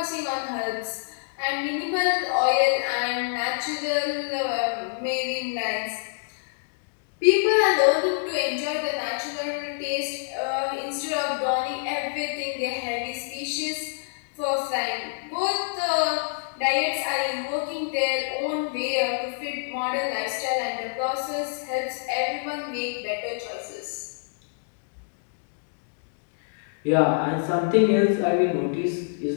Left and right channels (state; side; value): silent; right; digital silence